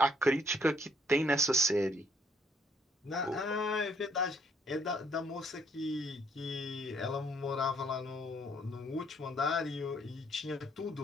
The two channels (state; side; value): normal; both; correlation 0.66